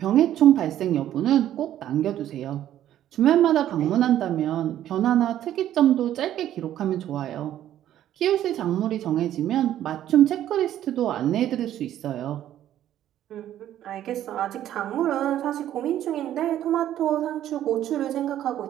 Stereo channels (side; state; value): left; quieter; 11.9 dB